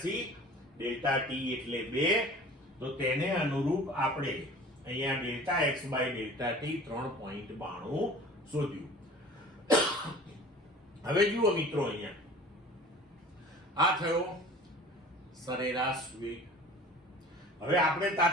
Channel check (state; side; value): normal; both; correlation 0.43